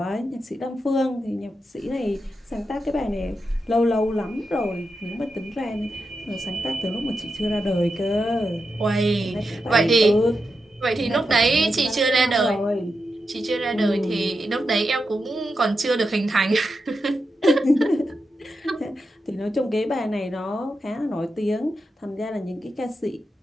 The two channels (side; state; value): both; normal; correlation 0.88